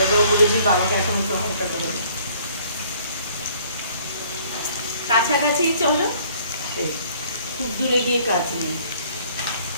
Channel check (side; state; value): both; inverted; correlation -0.58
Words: বলেছি বাবাকে এখন একটু হালকা করে দাও। কাছাকাছি চলো, খুব দূরে গিয়ে কাজ নেই।